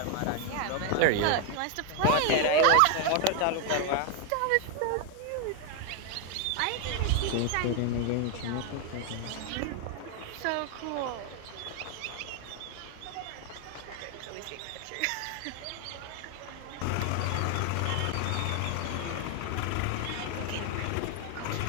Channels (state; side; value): different; both; correlation 0.01